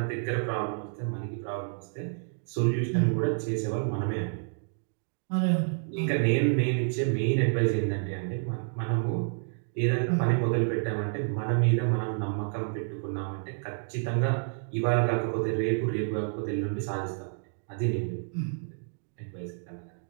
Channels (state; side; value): silent; left; digital silence